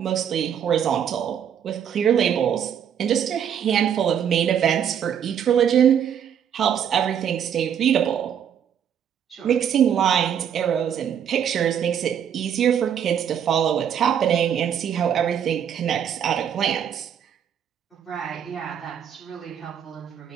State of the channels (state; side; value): quieter; left; 8.8 dB